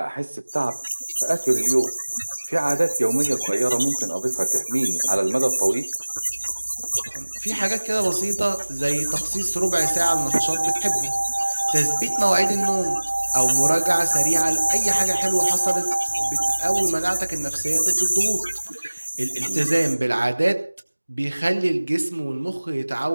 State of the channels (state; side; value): inverted; both; correlation -1.00